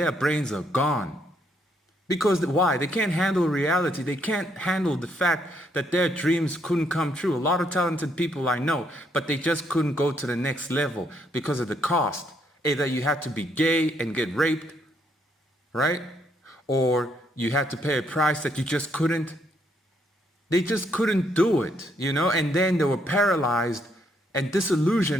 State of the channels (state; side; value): normal; both; correlation 0.72